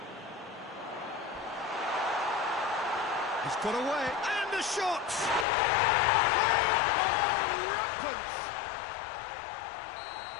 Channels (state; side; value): drops out; right; at 5.5 s